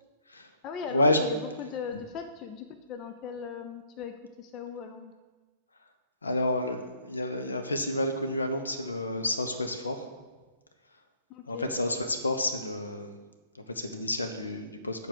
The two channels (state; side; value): inverted; both; correlation -0.64